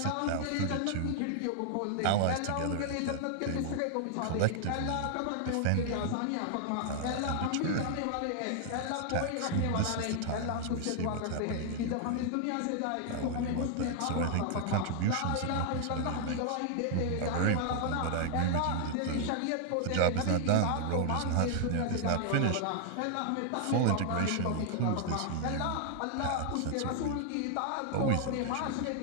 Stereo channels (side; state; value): both; different; correlation 0.00